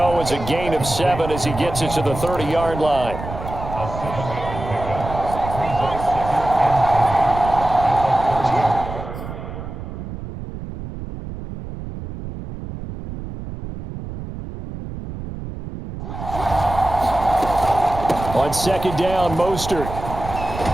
as a gain of 7 as he gets it to the 30-yard line. On second down, Mostert.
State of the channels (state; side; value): noise; right; rumble, 9 dB below the sound